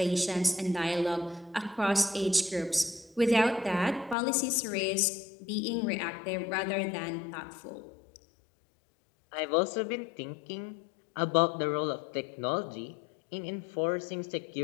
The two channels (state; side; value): drops out; right; at 4.2 s